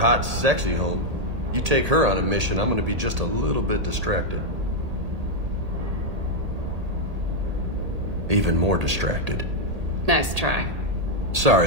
sexy home. You take her on a mission, I'm gonna be just a little bit distracted. Even more distracted. Nice try. Sorry,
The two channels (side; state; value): left; late; 1.8 ms